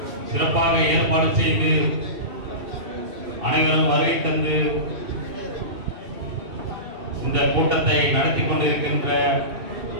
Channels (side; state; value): left; late; 2.7 ms